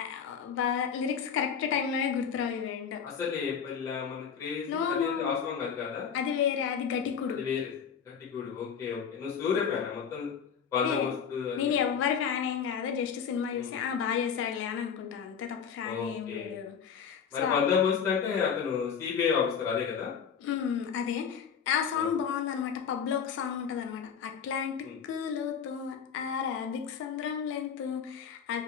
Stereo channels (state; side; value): quieter; right; 7.2 dB